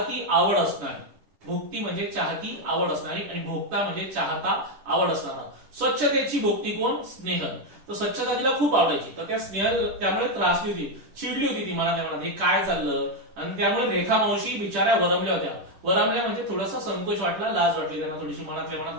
आवड असणारी. भोक्ती म्हणजे चाहती आवड असणारी आणि भोक्ता म्हणजे चाहता आवड असणारा. स्वच्छतेची भोक्ती कोण, स्नेहल. तर स्वच्छता तिला खूप आवडायची. तर त्या स्नेहल त्यामुळे त्रासली होती, चिडली होती ती मनात मनात, हे काय चाललं. आणि त्यामुळे रेखा मावशी बिचाऱ्या वरमल्या होत्या. वरमल्या म्हणजे थोडासा संकोच वाटला, लाज वाटली त्यांना, थोडीशी मनातल्या मनात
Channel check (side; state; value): left; late; 10 ms